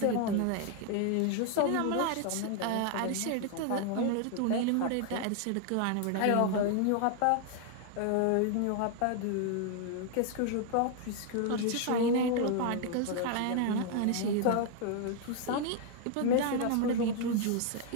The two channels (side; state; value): both; different; correlation 0.00